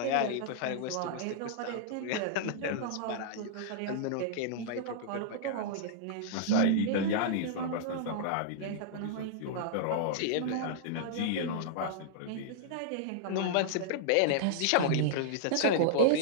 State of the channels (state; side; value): different; both; correlation -0.01